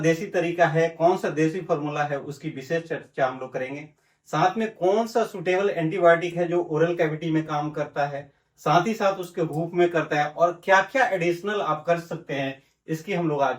तरीका है, कौन सा देसी फॉर्मूला है, उसकी विशेष चर्चा हम लोग करेंगे। साथ में कौन सा सुटेबल एंटीबायोटिक है जो ओरल कैविटी में काम करता है, साथ ही साथ उसके भूख में करता है, और क्या क्या एडिशनल आप कर सकते हैं, इसकी हम लोग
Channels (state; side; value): identical; both; correlation 1.00